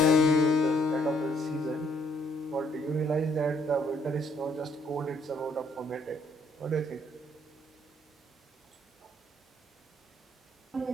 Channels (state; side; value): normal; both; correlation 0.68